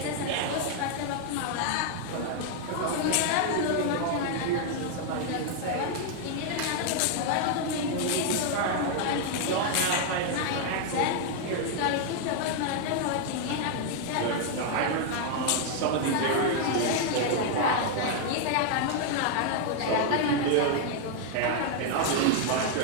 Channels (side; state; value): both; different; correlation 0.00